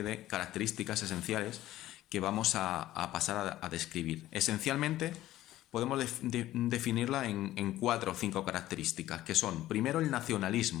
de características esenciales que vamos a pasar a describir. Esencialmente podemos definirla en 4 o 5 características, que son, primero, el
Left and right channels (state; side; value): quieter; right; 14.7 dB